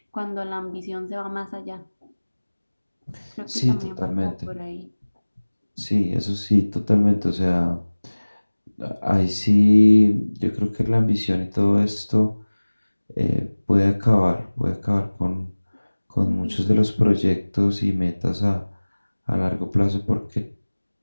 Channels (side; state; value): both; inverted; correlation -1.00